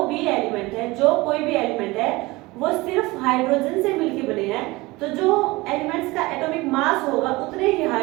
भी एलिमेंट है, जो कोई भी एलिमेंट है वो सिर्फ हाइड्रोजन से मिलकर बने हैं। तो जो एलिमेंट्स का एटॉमिक मास होगा उतने ही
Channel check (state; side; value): quieter; left; 21.8 dB